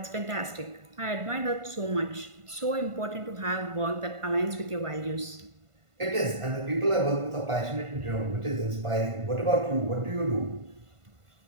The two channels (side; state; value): left; late; 1.5 ms